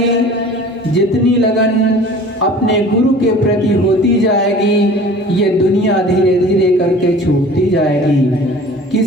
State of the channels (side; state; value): both; normal; correlation 0.44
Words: जितनी लगन अपने गुरु के प्रति होती जाएगी, ये दुनिया धीरे धीरे करके छूटती जाएगी।